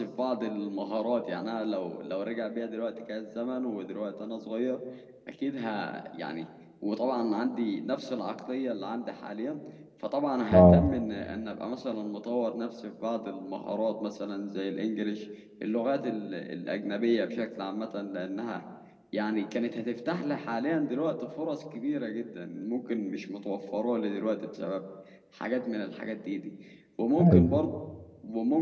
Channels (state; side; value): identical; both; correlation 1.00